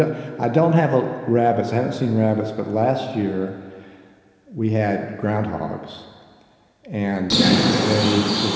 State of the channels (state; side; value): identical; both; correlation 1.00